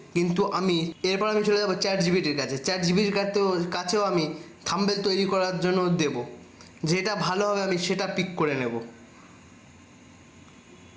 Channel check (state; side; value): identical; both; correlation 1.00